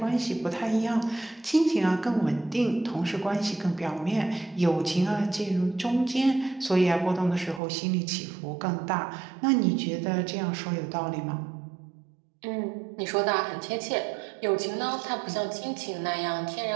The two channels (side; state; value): left; drops out; at 7.6 s